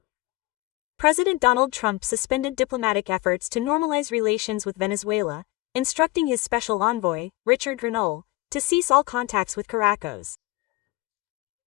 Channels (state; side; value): quieter; right; 20.6 dB